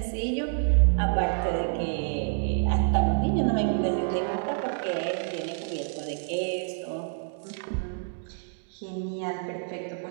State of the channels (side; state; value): left; silent; digital silence